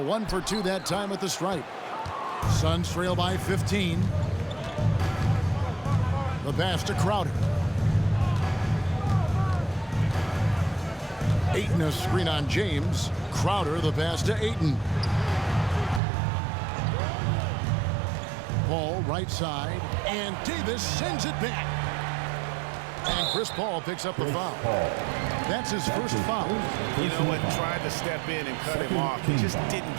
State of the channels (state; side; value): drops out; left; at 16.0 s